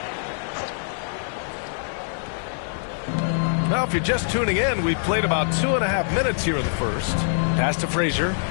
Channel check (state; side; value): silent; right; digital silence